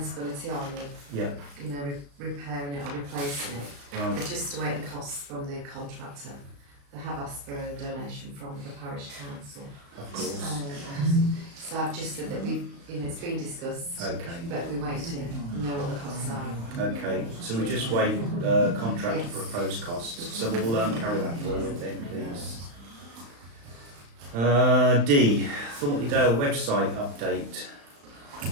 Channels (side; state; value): left; late; 35 ms